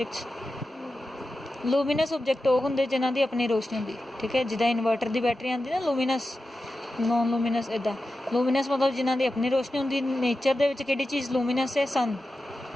ਲੂਮੀਨਸ ਓਬਜੈਕਟ ਉਹ ਹੁੰਦੇ ਜਿਨ੍ਹਾਂ ਦੀ ਆਪਣੀ ਰੋਸ਼ਨੀ ਹੁੰਦੀ, ਠੀਕ ਹੈ, ਜਿੱਦਾਂ ਇਨਵਰਟਰ ਦੀ ਬੈਟਰੀ ਆਉਂਦੀ ਨਾ ਲੂਮੀਨਸ, ਨੋਨ ਲੂਮੀਨਸ ਇੱਦਾਂ। ਲੂਮੀਨਸ ਮਤਲਬ ਜਿਨ੍ਹਾਂ ਦੀ ਆਪਣੀ ਰੋਸ਼ਨੀ ਹੁੰਦੀ। ਨੇਚਰ ਦੇ ਵਿੱਚ ਕਿਹੜੀ ਚੀਜ਼ ਲੂਮੀਨਸ ਹੈ, ਸਨ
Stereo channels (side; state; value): both; normal; correlation 0.92